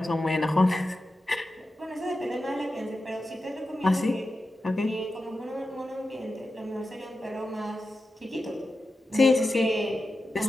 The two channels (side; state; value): both; normal; correlation 0.91